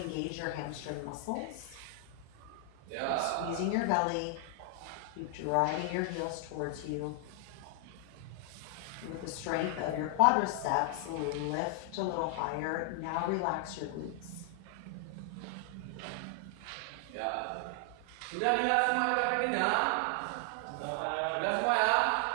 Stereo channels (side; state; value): both; different; correlation 0.00